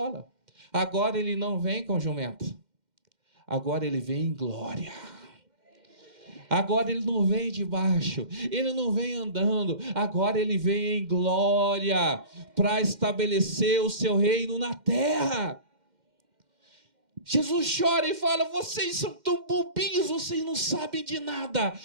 Agora ele não vem com jumento. Agora ele vem em glória. Agora ele não vem de baixo, ele não vem andando, agora ele vem em glória para estabelecer o seu reino na terra. Jesus chora e fala, vocês são tão bobinhos, vocês não sabem de nada,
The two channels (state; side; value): late; left; 2.1 ms